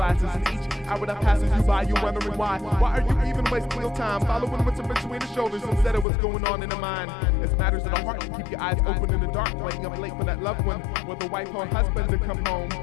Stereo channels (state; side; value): drops out; right; at 6.1 s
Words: And each hour that passes you by, you're wondering why. Why are you even wasting your time following what's in between the shoulders instead of what's going on in the mind? It's matters of the heart to keep your eyes open in the dark, waiting up late for that loved one, whether wife or husband to come home.